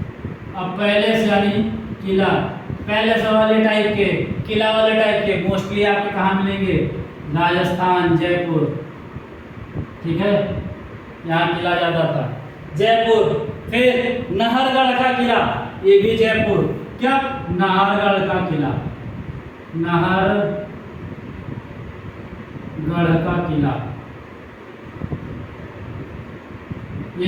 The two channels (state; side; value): identical; both; correlation 1.00